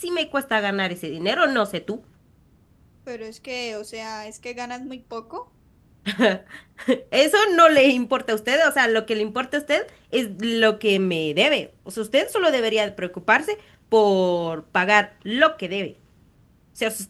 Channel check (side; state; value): both; identical; correlation 1.00